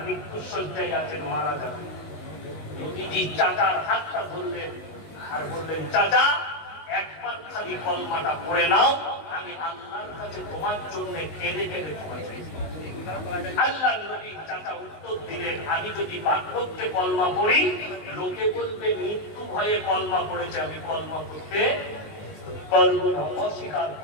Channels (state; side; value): late; right; 19 ms